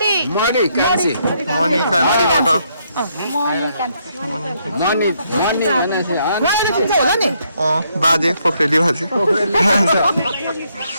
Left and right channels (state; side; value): inverted; both; correlation -0.74